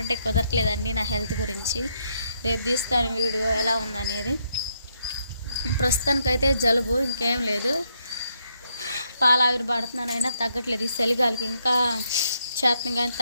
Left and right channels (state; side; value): inverted; both; correlation -0.76